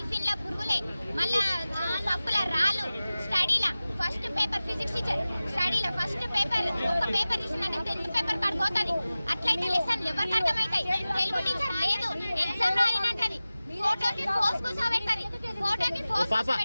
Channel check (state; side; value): inverted; both; correlation -0.96